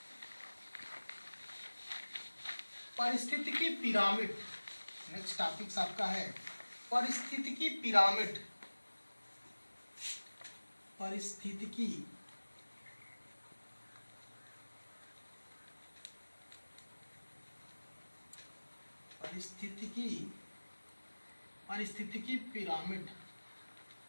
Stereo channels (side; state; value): both; inverted; correlation -1.00